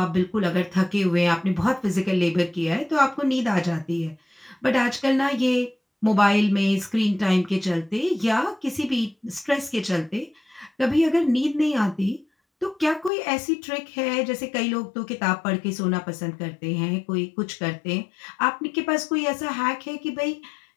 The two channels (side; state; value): right; drops out; at 13.1 s